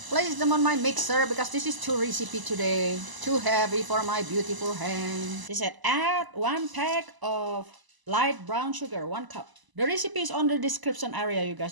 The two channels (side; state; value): left; late; 1.0 ms